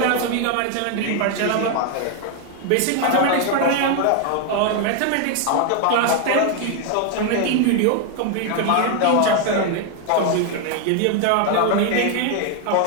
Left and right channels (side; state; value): both; different; correlation 0.01